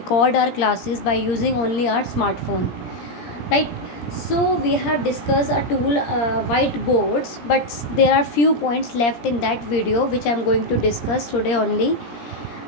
our classes by using only our smartphone. Right? So we have discussed a tool whiteboards, but there are few points left in that video which I am going to discuss today only.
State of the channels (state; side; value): late; right; 17 ms